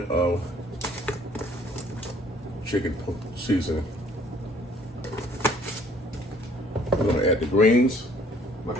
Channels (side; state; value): both; normal; correlation 0.59